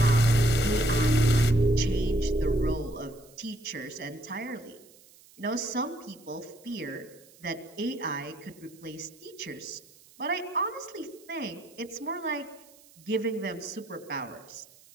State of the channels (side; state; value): right; noise; hiss, 25 dB below the sound